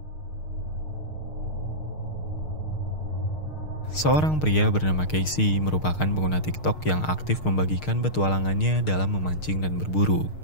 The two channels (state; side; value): late; right; 6.5 ms